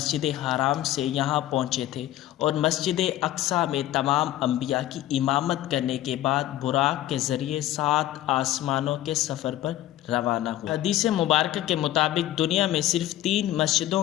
حرام سے یہاں پہنچے تھے اور مسجد اقصی میں تمام انبیاء کی امامت کرنے کے بعد براق کے ذریعے 7 آسمانوں کے سفر پر روانہ ہوئے۔ حدیث مبارکہ کے مطابق دنیا میں صرف 3 مسجدوں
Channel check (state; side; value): quieter; right; 14.0 dB